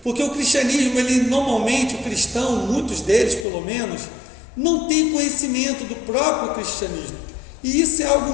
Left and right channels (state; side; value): drops out; right; at 3.5 s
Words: porque o cristianismo, normalmente, o cristão, muitos deles pelo menos, não tem conhecimento do próprio cristianismo, e isso é